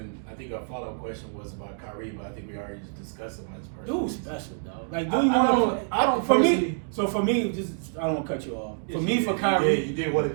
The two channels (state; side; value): silent; left; digital silence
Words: I think our follow-up question was about Kyrie, but I think we already just discussed about his personal. Dude's special, dog. Like, I do you want don't- to play? I don't For me, personally- so for me, just I don't want to cut you off. For Yes, me, you for did. Kyrie, You did want to